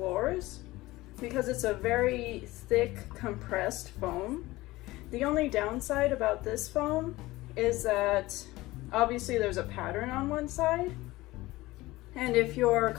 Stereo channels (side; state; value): right; quieter; 19.0 dB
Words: because it's a very thick compressed foam. The only downside about this foam is that obviously there's a pattern on one side, and if your